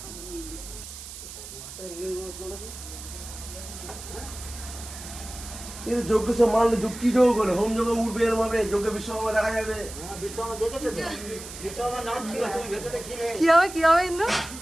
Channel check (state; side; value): noise; right; hiss, 12 dB below the sound